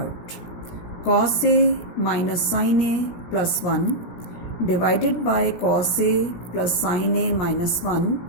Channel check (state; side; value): late; right; 17 ms